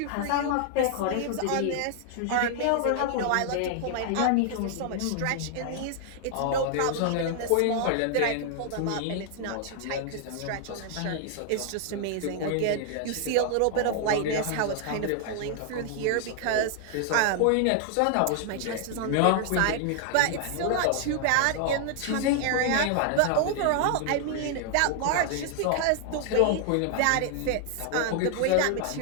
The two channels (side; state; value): both; different; correlation 0.00